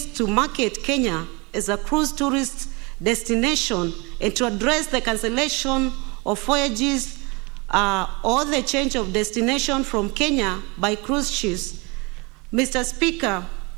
to market Kenya as a cruise tourist destination and to address the cancellation of voyages or the change of destination from Kenya by cruise ships. Mr. Speaker,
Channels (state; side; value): quieter; left; 27.9 dB